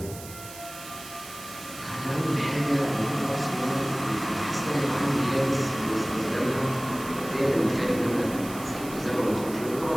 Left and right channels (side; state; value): right; noise; hiss, 14 dB below the sound